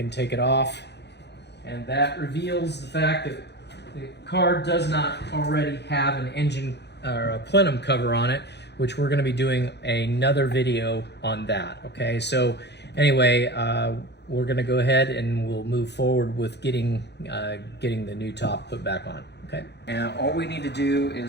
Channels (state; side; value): late; right; 0.50 ms